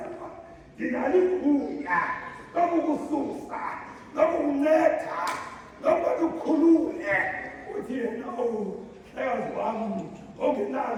ndinalo igunya lokukususa lokukunceda lokuba ukhulule. Uthi yena hlekazi wami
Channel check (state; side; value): identical; both; correlation 1.00